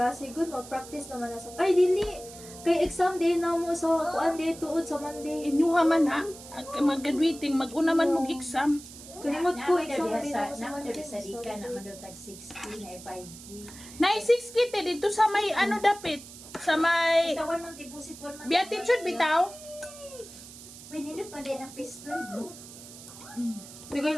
Good, mag-practice naman na sa... Ay, dili! Kay exam day na mo sa kuan day tuod sa Monday. Inyuha man ha. Mag-graduating. Mag-una man mong exam. Kalimot ko, exam day na mo sa Naman Monday. doon sa Dika, naman doon tag 60 na 5K. Nay 6 kite dito sa may ano dapit. Sa may... Basta 1 month deposit, 1 month. Beatitude bitaw. Uy, nindot pa din ang pistol, bro. Di kayo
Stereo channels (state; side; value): noise; right; hiss, 16 dB below the sound